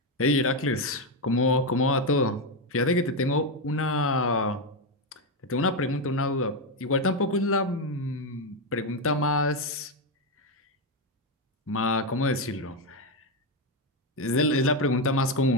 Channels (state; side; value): normal; both; correlation 0.07